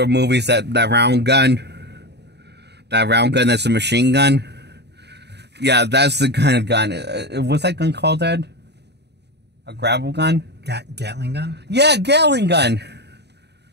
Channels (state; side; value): late; left; 0.49 ms